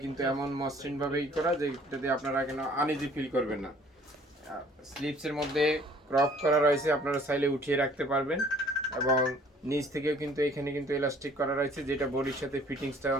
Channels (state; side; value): normal; both; correlation 0.55